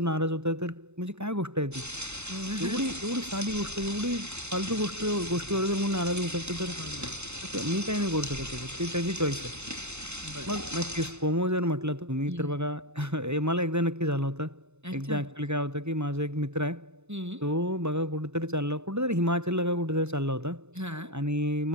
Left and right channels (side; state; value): left; late; 0.81 ms